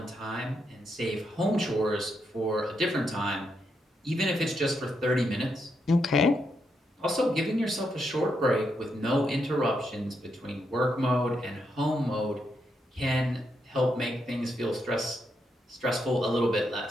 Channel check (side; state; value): both; normal; correlation 0.81